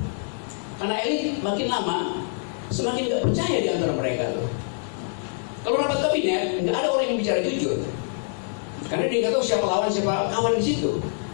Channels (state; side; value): silent; right; 62 dB below the other